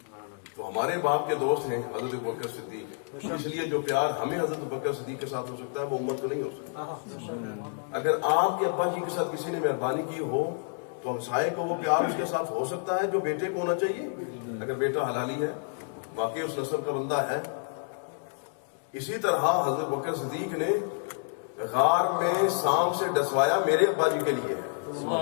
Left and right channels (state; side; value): silent; right; 58 dB below the other